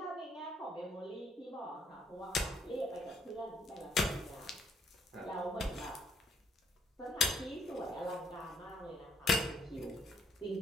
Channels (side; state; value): both; normal; correlation 0.68